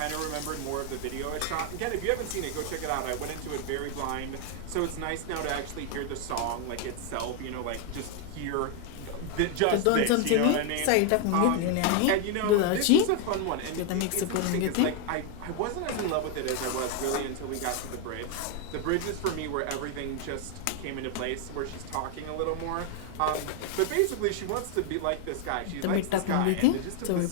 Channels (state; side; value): different; both; correlation 0.01